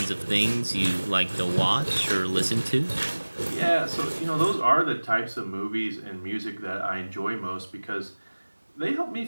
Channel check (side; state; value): both; inverted; correlation -1.00